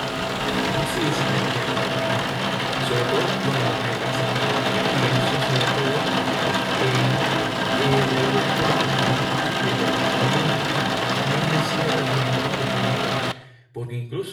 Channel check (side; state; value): both; identical; correlation 1.00